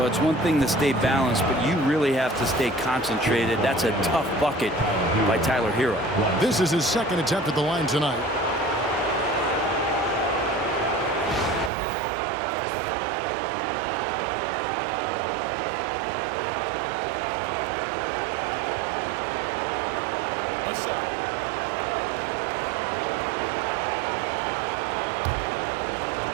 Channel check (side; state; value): left; drops out; at 11.7 s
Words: it's one thing to stay balanced, but you really have to stay concentrated. That's a tough bucket by Tyler Hero. This is his second attempt at the line tonight.